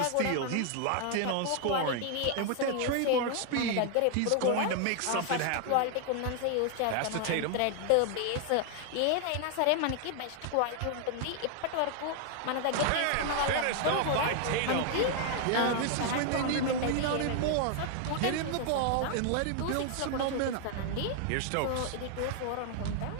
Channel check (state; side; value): different; both; correlation 0.00